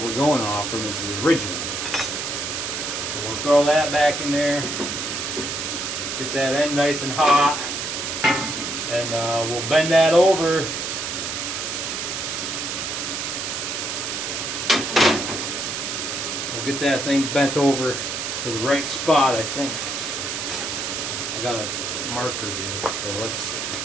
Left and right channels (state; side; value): noise; right; hiss, 3 dB below the sound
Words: we're going off from, is the original. So we'll throw that back in there, get that end nice and hot, and we'll bend that over. We'll get that thing bent over to the right spot, I think. I got a marker here, so let's